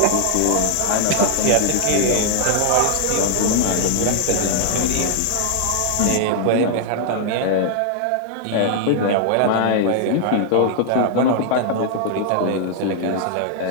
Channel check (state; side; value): different; both; correlation 0.00